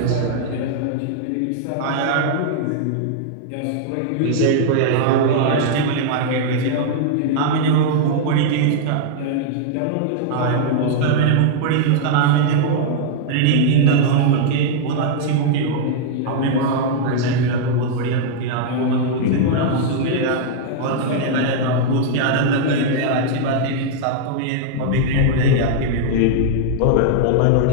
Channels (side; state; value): both; different; correlation -0.01